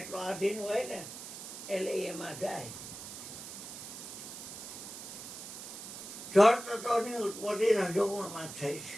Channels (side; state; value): right; noise; hiss, 10 dB below the sound